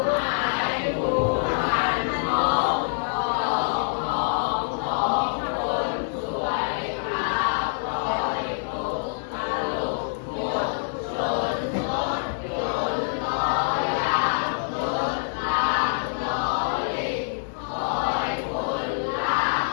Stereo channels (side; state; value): right; silent; 57 dB below the other